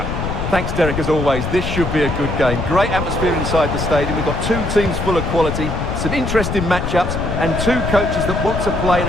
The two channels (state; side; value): noise; left; rumble, 3 dB below the sound